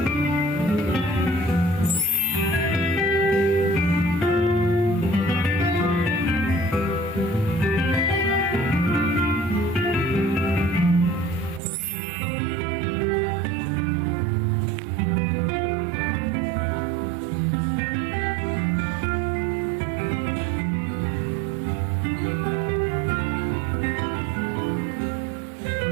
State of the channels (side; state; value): left; drops out; at 11.6 s